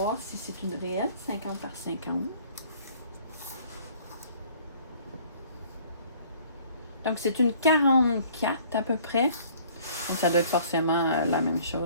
si c'est une réelle 50 par 50. Donc, c'est une 44 à peu près. Donc, ça doit être forcément la même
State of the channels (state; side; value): inverted; both; correlation -0.55